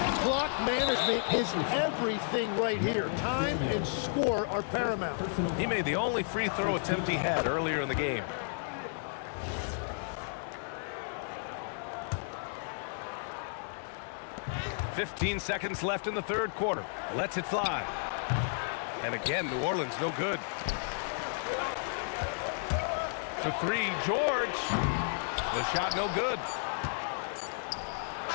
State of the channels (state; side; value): silent; right; digital silence